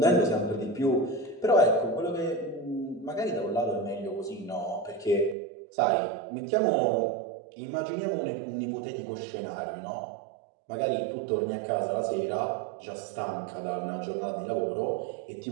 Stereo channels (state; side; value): drops out; left; at 5.4 s